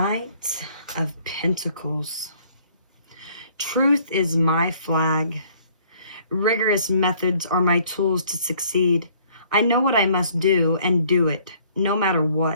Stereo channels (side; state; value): both; inverted; correlation -0.60